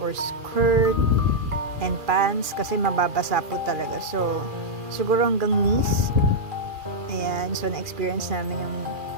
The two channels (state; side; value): late; left; 2.4 ms